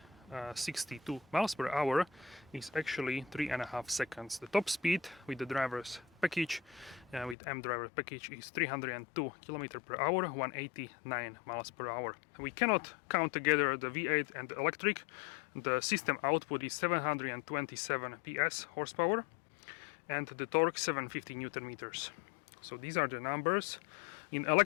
62 miles per hour, is actually 3.5 seconds. The top speed with the driver's package, with M driver package, is 302 km per hour, 189 miles per hour. We cannot count together the V8 and the electric. The system output is 727 PS horsepower, and the torque 750 Newton meters. So these are the numbers. In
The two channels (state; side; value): drops out; right; at 7.4 s